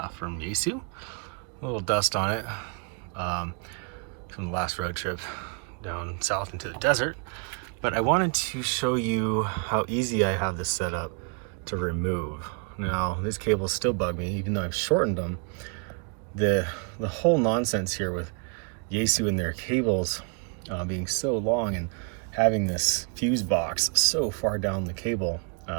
from Yaesu. A little dust on it from the last road trip down south into the desert. But I wanted to show you how easy I have this set up to remove. Now, these cables still bug me, even though I've shortened them. The whole nonsense here with Yaesu and their cables being so long and having this fuse box so far down the cable.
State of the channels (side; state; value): left; quieter; 38.5 dB